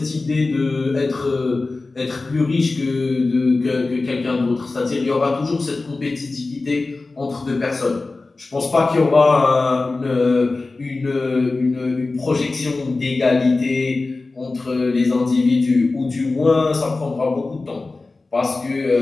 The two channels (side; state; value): right; quieter; 3.5 dB